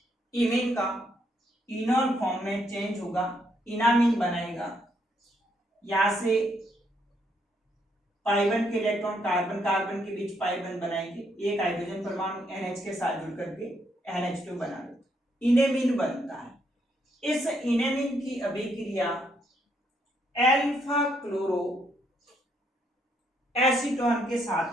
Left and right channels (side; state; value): both; normal; correlation 0.74